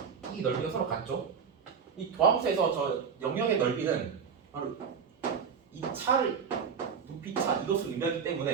이 넓이가 서로 같죠. 이 도함수에서 저 영역의 넓이는 바로 이 차를 높이 차 이것을 의미하기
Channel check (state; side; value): quieter; left; 6.5 dB